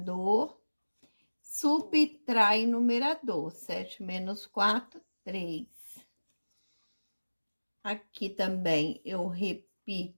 subtrai o numerador. 7 menos 4, 3. Aqui também eu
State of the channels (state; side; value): inverted; both; correlation -1.00